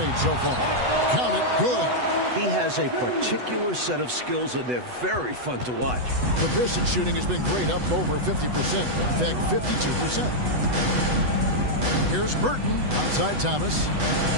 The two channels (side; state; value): left; late; 8.1 ms